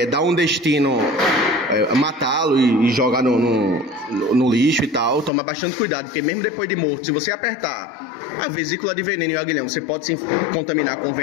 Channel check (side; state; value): right; drops out; at 5.3 s